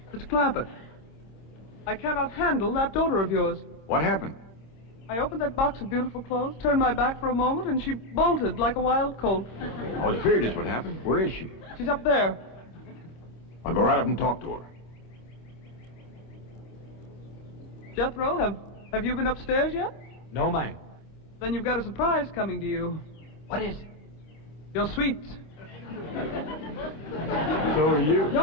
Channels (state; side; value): late; right; 26 ms